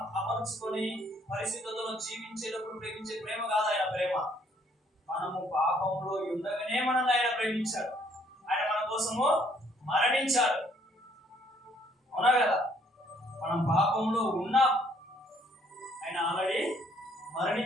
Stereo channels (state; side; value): normal; both; correlation 0.65